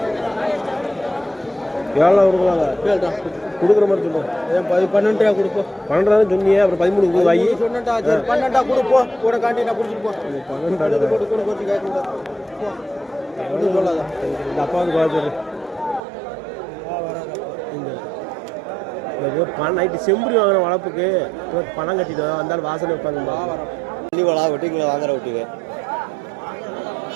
எவ்வளோ கொடுக்கலாங்க? கொடுக்குற மாதிரி சொல்லுவோம். 12 ரூபா கொடுப்போம். 12 சொன்னியே, அப்புறம் 13 வாங்கி சொன்னா 12 கொடுப்போம். கூட காண்டி நான் குடிச்சிட்டு போ. 12 போட்டு கேட்க சொல்லாத. இந்த அப்பாவுக்கு பார்த்துரு. இந்த பணம் நைட்டு செம்புரி வாங்குற வளர்ப்புக்கு பணம் கட்டிட்டு வந்தாலும் வாசனை வைப்பாங்க. வண்டிங்களா வெட்டிங்களா வாங்குற விட்டுங்க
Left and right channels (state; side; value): drops out; left; at 16.0 s